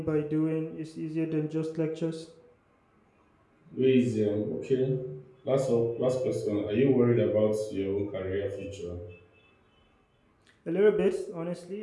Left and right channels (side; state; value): both; identical; correlation 1.00